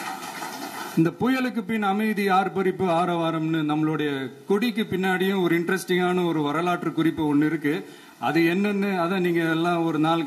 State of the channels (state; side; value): identical; both; correlation 1.00